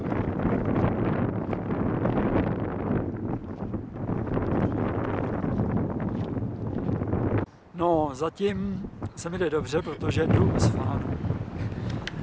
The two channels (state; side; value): identical; both; correlation 1.00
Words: No, zatím se mi jde dobře, protože jdu z fánu.